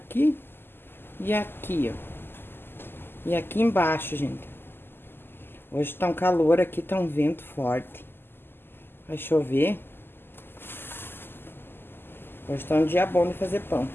e aqui, ó. E aqui embaixo, gente. Hoje tá um calor aqui, tá um vento forte. Vai chover. Hoje tá um dia bom de fazer pão.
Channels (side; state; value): right; late; 0.10 ms